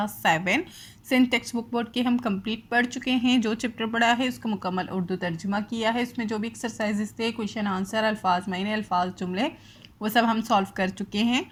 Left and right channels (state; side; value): identical; both; correlation 1.00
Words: 7। Sindh text book board के हम कंप्लीट पढ़ चुके हैं। जो चैप्टर पढ़ा है उसको मुकम्मल उर्दू तर्जुमा किया है। उसमें जो भी एक्सरसाइजेस थे, क्वेश्चन आंसर, अल्फाज मायने, अल्फाज जुमले, वो सब हम सॉल्व कर चुके हैं।